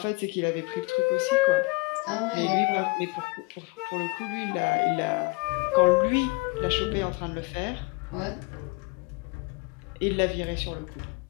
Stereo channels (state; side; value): quieter; right; 27.9 dB